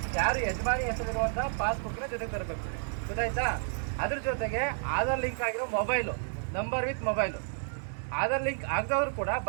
ಯಾರು ಯಜಮಾನಿ ಹೆಸರಿರುವಂತ ಪಾಸ್ಬುಕ್ ನ ಜೊತೆಗೆ ತರಬೇಕು, ಗೊತ್ತಾಯ್ತಾ? ಅದ್ರ ಜೊತೆಗೆ ಆಧಾರ್ ಲಿಂಕ್ ಆಗಿರೋ mobile, number with mobile. Aadhaar link ಆಗದವ್ರು ಕೂಡ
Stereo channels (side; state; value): left; silent; 57 dB below the other